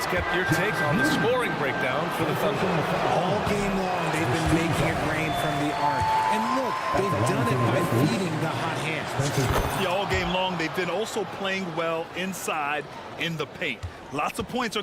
get your take on the scoring breakdown for the Thunder. All game long, they've been making it rain from the arc. And look, they've done it by feeding the hot hands. Yeah, all game long, they've then also playing well inside in the paint. Lots of points are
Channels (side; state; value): both; identical; correlation 1.00